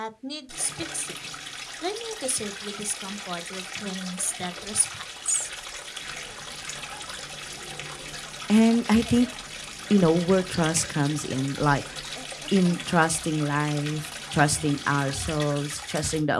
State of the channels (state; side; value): identical; both; correlation 1.00